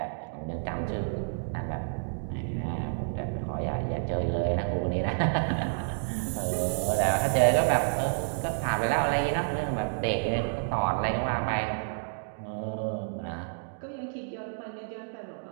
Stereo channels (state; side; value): silent; left; digital silence